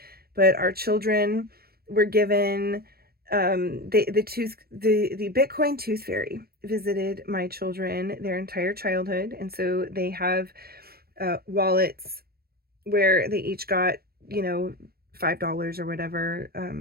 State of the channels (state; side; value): late; left; 0.45 ms